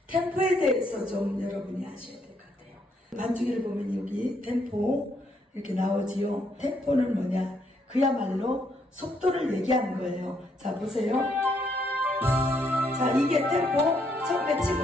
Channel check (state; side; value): normal; both; correlation 0.73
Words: 템포에 대해서 좀 여러분이 아셔야 될 것 같아요. 반주기를 보면 여기 템포 이렇게 나오지요. 템포는 뭐냐? 그야말로 속도를 얘기하는 거예요. 자, 보세요. 자, 이게 템포 처음에